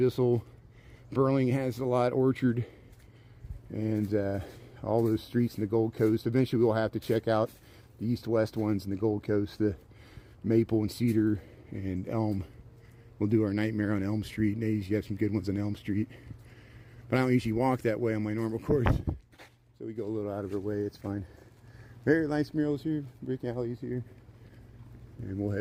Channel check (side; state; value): both; identical; correlation 1.00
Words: Burling has a lot. Orchard, and all those streets in the Gold Coast. Eventually we'll have to check out the east-west ones in the Gold Coast, the Maple and Cedar and Elm. We'll do our nightmare on Elm Street, and they usually have some good ones on Elm Street. But I don't usually walk that way on my normal course, so we go a little out of our way. It's fine. Very nice murals here, brick alleys here, and we'll